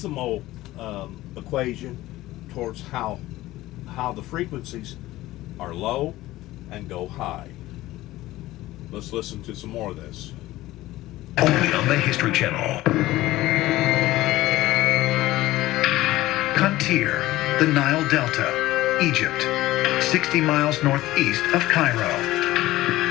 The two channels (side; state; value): right; quieter; 16.8 dB